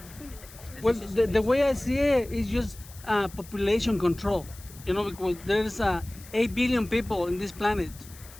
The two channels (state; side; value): noise; left; hiss, 20 dB below the sound